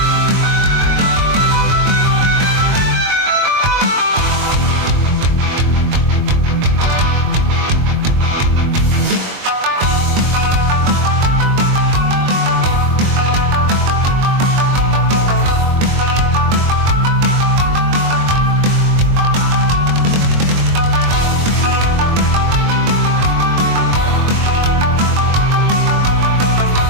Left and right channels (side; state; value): left; late; 22 ms